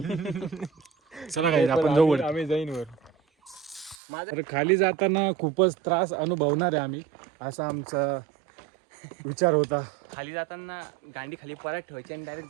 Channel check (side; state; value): left; drops out; at 4.0 s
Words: चला गाईज आपण जाऊ वरती. आम्ही जाईन वर. तर खाली जाताना खूपच त्रास अनुभवणार आहे आम्ही असा आमचा विचार होता. खाली जाताना गांडी खाली परत ठेवायची आणि डायरेक्ट